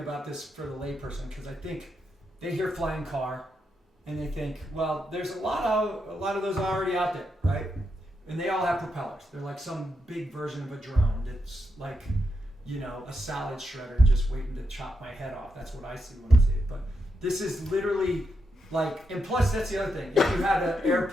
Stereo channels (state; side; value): normal; both; correlation 0.83